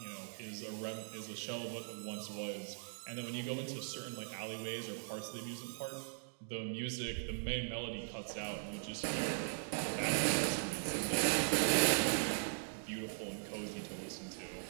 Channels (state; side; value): silent; left; digital silence